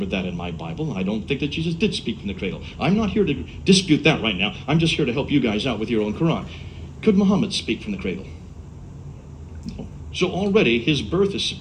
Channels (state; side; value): identical; both; correlation 1.00